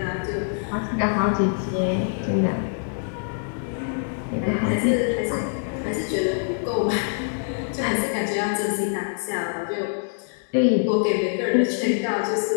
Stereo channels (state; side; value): silent; right; digital silence